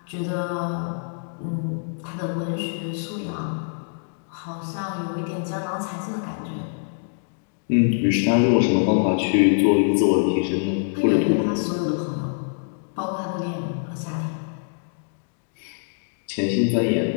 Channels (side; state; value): right; silent; digital silence